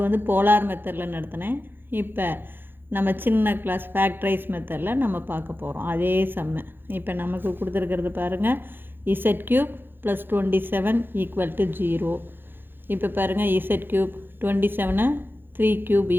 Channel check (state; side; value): late; left; 0.10 ms